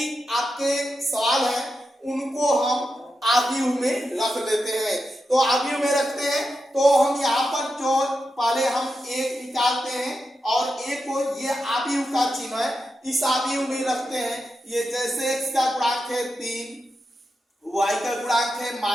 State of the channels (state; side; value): normal; both; correlation 0.88